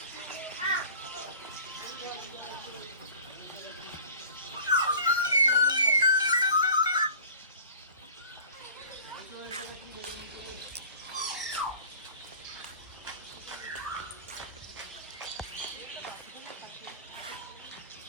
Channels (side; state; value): both; inverted; correlation -0.42